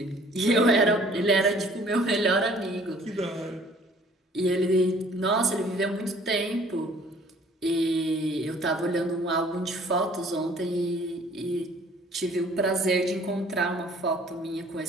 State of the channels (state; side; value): normal; both; correlation 0.55